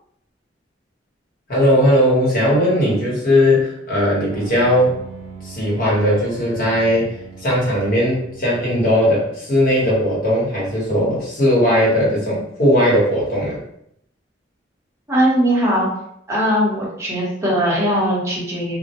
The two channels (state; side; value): normal; both; correlation 0.43